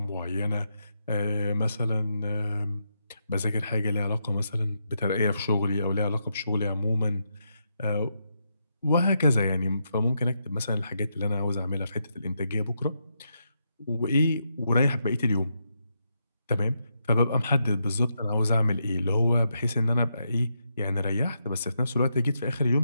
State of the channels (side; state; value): both; inverted; correlation -0.82